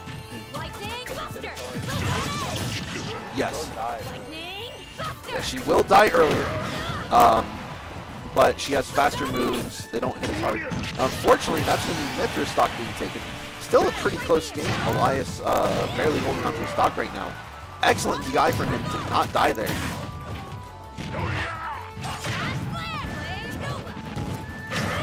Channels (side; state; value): both; identical; correlation 1.00